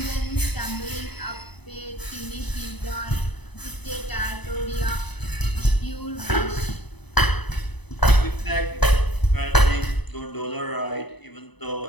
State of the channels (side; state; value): right; late; 0.99 ms